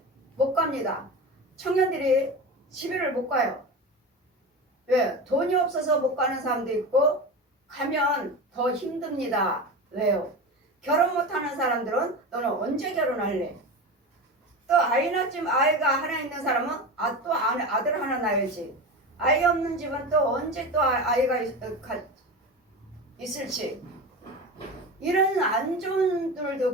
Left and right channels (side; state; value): both; normal; correlation 0.26